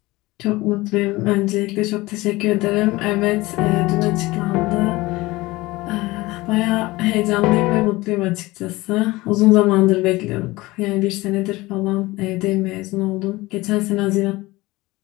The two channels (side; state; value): right; quieter; 20.3 dB